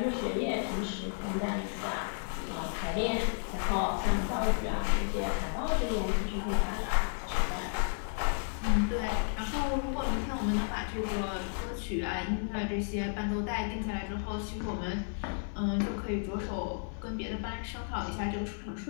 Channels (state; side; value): silent; right; digital silence